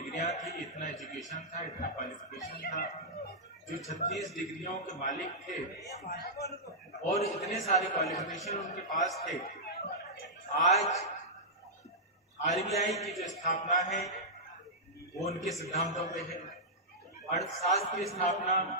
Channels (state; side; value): normal; both; correlation -0.11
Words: थी, इतना एजुकेशन था, इतना क्वालिफिकेशन था। जो 36 डिग्रियों के मालिक थे और इतने सारे क्वालिफिकेशन उनके पास थे, आज आरबीआई की जो स्थापना है वो उनके सिद्धांतों पे है, अर्थशास्त्र की स्थापना